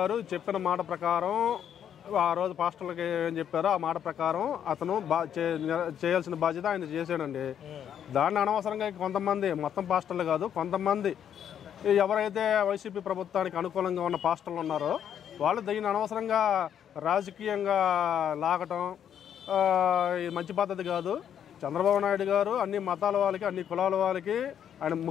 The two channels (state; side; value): quieter; right; 9.2 dB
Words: చెప్పిన మాట ప్రకారం ఆ రోజు పాస్టర్లకి ఏం చెప్పారో ఆ మాట ప్రకారం అతను చేయాల్సిన బాధ్యత ఆయన చేశాడండి. దాన్ని అనవసరంగా కొంతమంది, మొత్తం పాస్టర్లు కాదు, కొంతమంది ఎవరైతే వైసీపీ ప్రభుత్వానికి అనుకూలంగా ఉన్న పాస్టర్లు ఉన్నారో వాళ్ళు దీన్ని అనవసరంగా రాజకీయంగా లాగటం ఇది మంచి పద్ధతి కాదు. చంద్రబాబు నాయుడు గారు అన్ని మతాల వాళ్ళకి, అన్ని కులాల వాళ్ళకి ఆయన